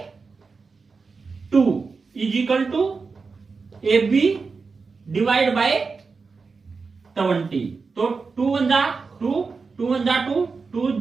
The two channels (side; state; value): left; quieter; 4.6 dB